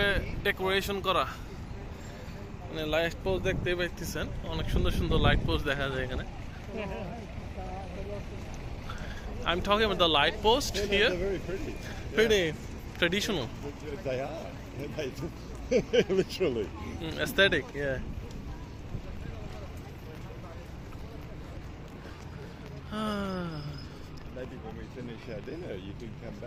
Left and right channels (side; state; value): both; identical; correlation 1.00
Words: ডেকোরেশন করা। মানে লাইট পোস্ট দেখতেই পাইতেছেন, অনেক সুন্দর সুন্দর লাইট পোস্ট দেখা যায় এখানে। I'm talking about the light post Yeah, here. they're very pretty. Pretty traditional, They are. Literally. aesthetic, yeah. Maybe when we finish our dinner, you can come